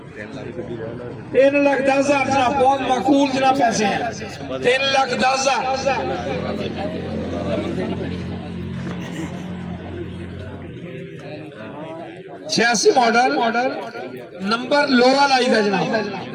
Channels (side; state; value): both; identical; correlation 1.00